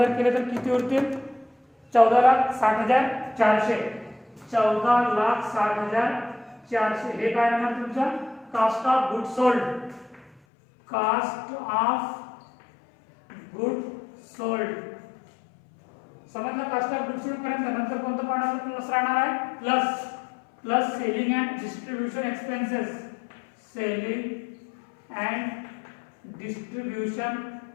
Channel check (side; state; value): right; drops out; at 10.4 s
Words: केले तर किती उरतील, 14,60,400. 14,60,400 हे काय येणार तुमचा cost of good sold. Cost of good sold समजलं. कास्ट ऑफ गुड सोल्ड पर्यंत नंतर कोणतं पॉईंट प्लस राहणार आहे, plus selling and distribution expenses. Selling and distribution